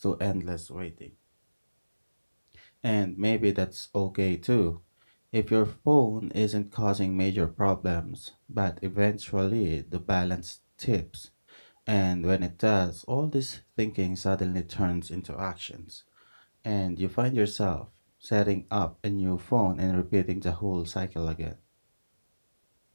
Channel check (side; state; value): both; inverted; correlation -1.00